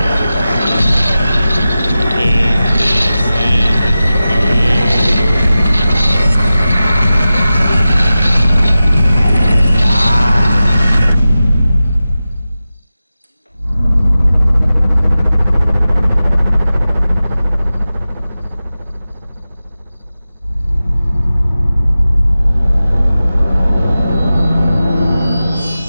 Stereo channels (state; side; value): inverted; both; correlation -0.94